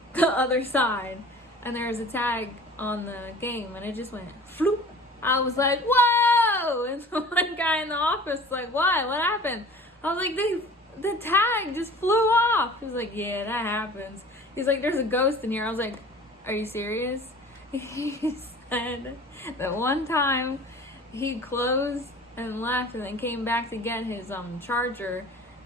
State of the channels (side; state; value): both; normal; correlation 0.44